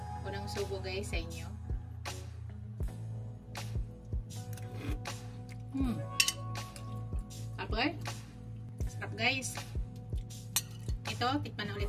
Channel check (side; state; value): both; identical; correlation 1.00